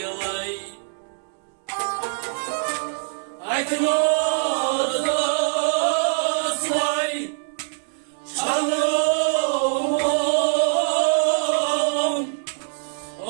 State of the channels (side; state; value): left; silent; digital silence